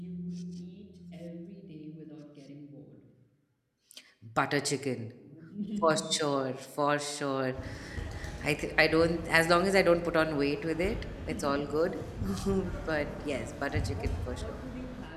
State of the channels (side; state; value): both; identical; correlation 1.00